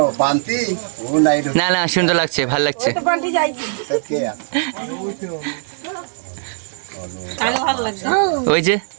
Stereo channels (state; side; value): silent; left; 66 dB below the other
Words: পান্তি ও নাই না না সুন্দর লাগছে ভালো লাগছে ভালো লাগছে ওই যে